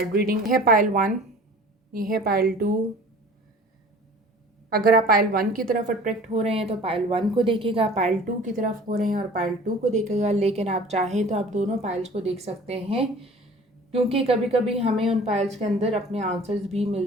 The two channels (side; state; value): both; normal; correlation 0.45